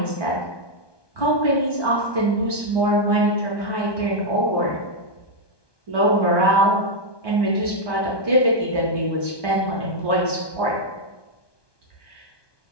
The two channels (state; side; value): late; right; 1.2 ms